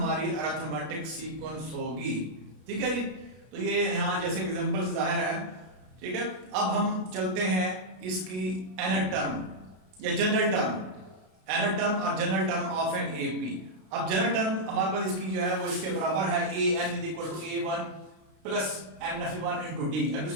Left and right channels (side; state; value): left; late; 32 ms